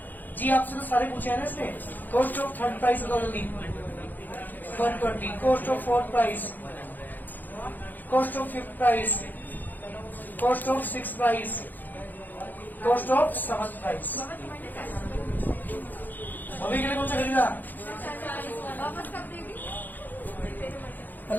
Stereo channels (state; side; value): late; right; 0.086 ms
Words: जी आपसे तो सारे पूछे हैं ना इसने। कॉस्ट ऑफ थर्ड प्राइस बता जल्दी। 120। Cost of fourth price, cost of fifth price, cost of six price, cost of seventh price. अभी के लिए कौन सा खरीदा?